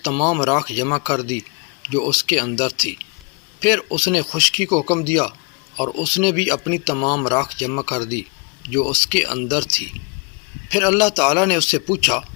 تمام راکھ جمع کر دی جو اس کے اندر تھی۔ پھر اس نے خشکی کو حکم دیا اور اس نے بھی اپنی تمام راکھ جمع کر دی جو اس کے اندر تھی۔ پھر اللہ تعالیٰ نے اس سے پوچھا،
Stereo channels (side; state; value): right; quieter; 31.6 dB